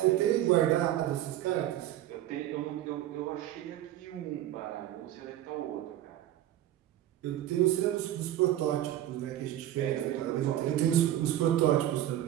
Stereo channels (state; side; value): quieter; left; 12.9 dB